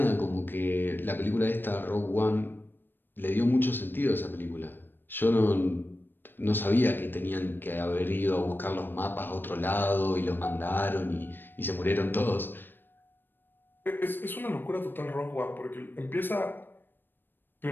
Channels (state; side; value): late; right; 0.095 ms